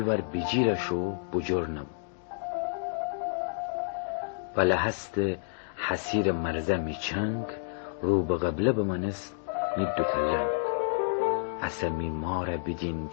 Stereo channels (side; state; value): right; silent; digital silence